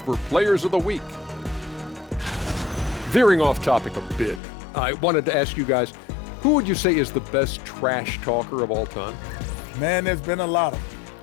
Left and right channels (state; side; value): drops out; right; at 4.4 s